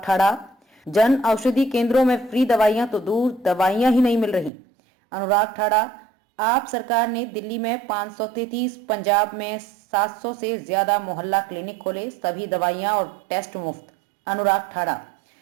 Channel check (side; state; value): left; drops out; at 4.5 s